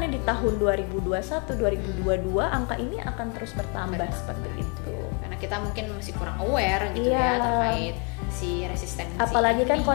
di tahun 2021, 2022 angka ini akan terus bertambah seperti itu. Karena kita mungkin masih kurang aware gitu ya terkait si resistensi. Apalagi kan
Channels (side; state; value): right; quieter; 35.9 dB